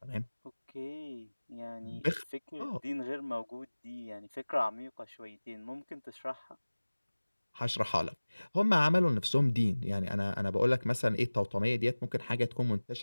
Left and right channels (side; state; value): both; inverted; correlation -1.00